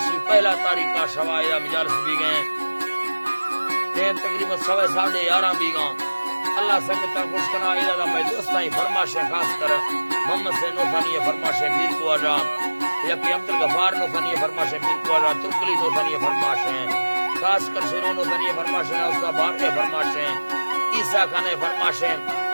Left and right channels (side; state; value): both; inverted; correlation -1.00